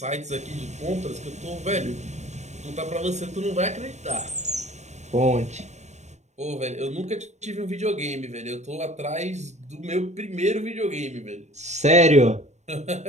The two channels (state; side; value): late; left; 0.33 ms